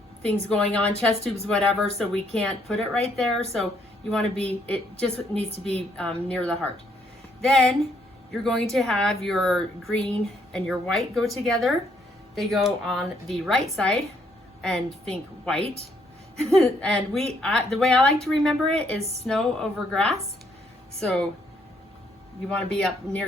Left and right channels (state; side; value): normal; both; correlation 0.70